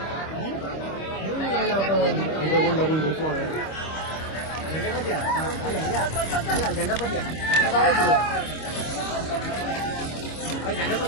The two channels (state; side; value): late; right; 25 ms